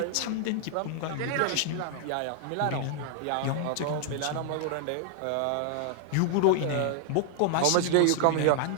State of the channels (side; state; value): both; different; correlation 0.00